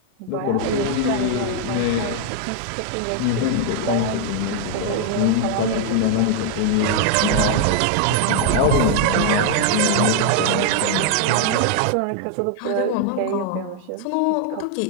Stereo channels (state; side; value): different; both; correlation 0.00